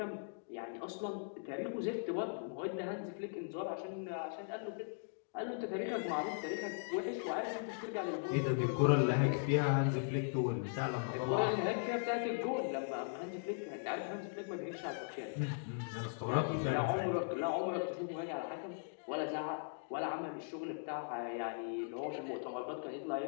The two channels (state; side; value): silent; right; digital silence